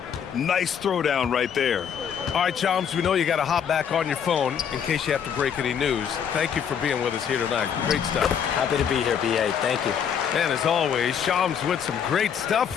Nice throwdown right there. All right, Chums, we know you got to hop back on your phone in case you have to break any news. Thank you for being with us here tonight. Great stuff. Happy to be here, BA. Thank you. And as always, Shams with some great stuff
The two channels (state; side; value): quieter; right; 7.9 dB